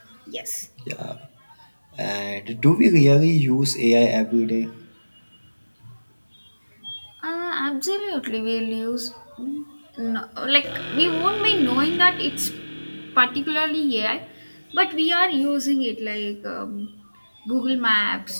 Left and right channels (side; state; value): both; inverted; correlation -1.00